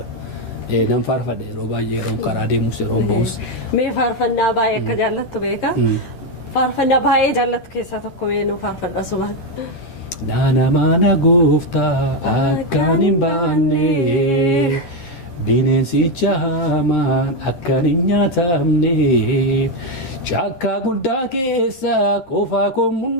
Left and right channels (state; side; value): late; right; 13 ms